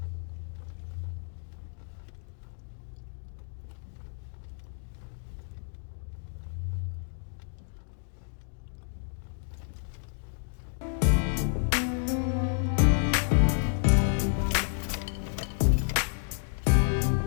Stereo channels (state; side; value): silent; right; digital silence